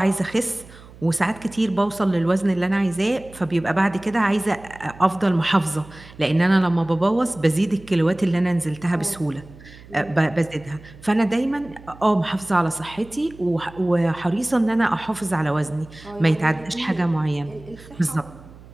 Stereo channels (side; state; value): right; noise; hum, 20 dB below the sound